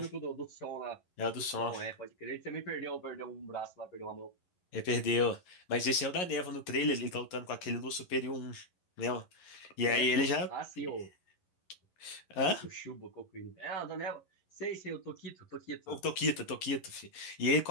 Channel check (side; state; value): right; late; 11 ms